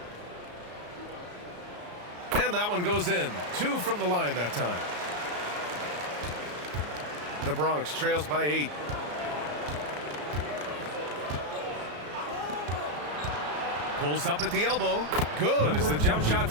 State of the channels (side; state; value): left; late; 34 ms